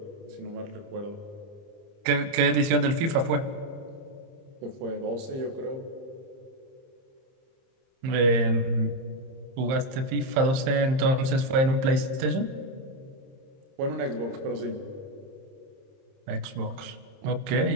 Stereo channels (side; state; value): left; late; 30 ms